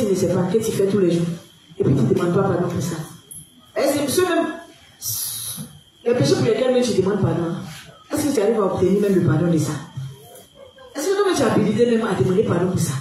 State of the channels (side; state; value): both; identical; correlation 1.00